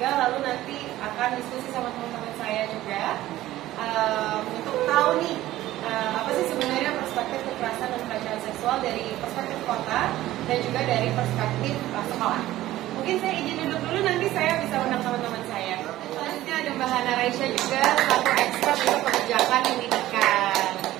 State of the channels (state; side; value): quieter; left; 15.2 dB